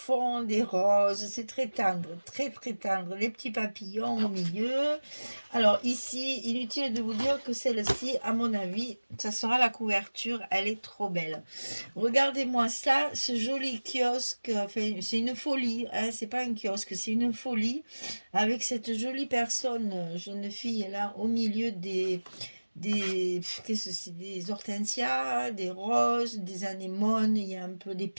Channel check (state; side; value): inverted; both; correlation -1.00